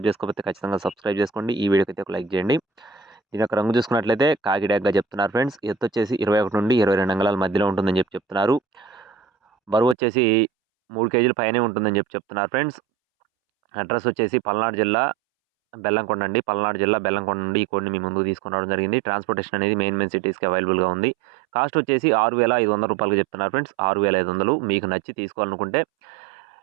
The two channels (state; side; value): drops out; left; at 10.0 s